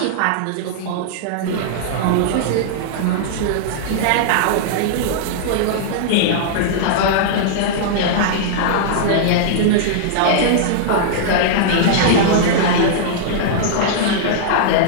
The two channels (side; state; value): both; different; correlation -0.02